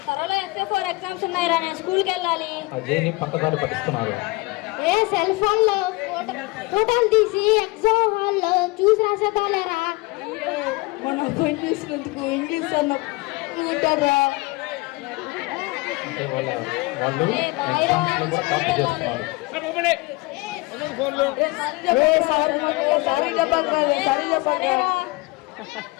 త్వరలో FA4 exams ఉన్నాయి రా, నేను స్కూల్కి వెళ్ళాలి. అజయ్ని పక్కదారి పట్టిస్తున్నారు. ఏ cell phone లో ఫోటోలు తీసి ఎగ్జామ్ హాల్ లో చూసి రాసేద్దాంలేరా. మన అబ్బాయి చూసినందుకు ఇంగ్లీష్ అన్న కూటారా. అంటే వాళ్ళు ఎగ్జామ్స్ లో కూడా కాపీ చేస్తున్నారు. సారీ చెప్పండి.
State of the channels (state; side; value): quieter; right; 23.8 dB